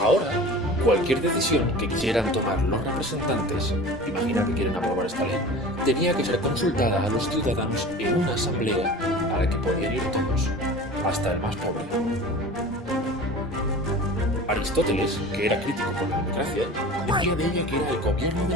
cualquier decisión que quisieran tomar los representantes, imagina que quieren aprobar esta ley, tenía que ser consultada a los ciudadanos en una asamblea a la que podían ir todos, hasta el más pobre. Aristóteles, que era crítico con la democracia, decía de ella que era el gobierno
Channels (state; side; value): normal; both; correlation 0.38